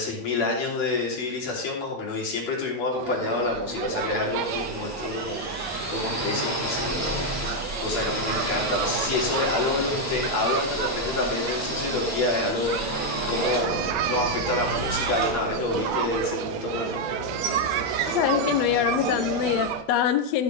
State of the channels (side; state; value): both; normal; correlation 0.02